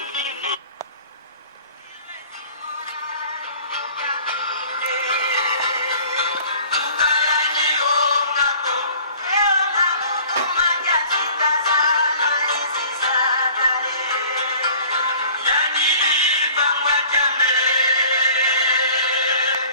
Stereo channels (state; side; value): inverted; both; correlation -0.49